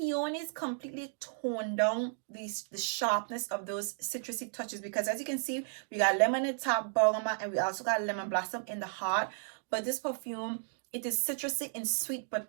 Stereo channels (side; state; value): left; silent; 55 dB below the other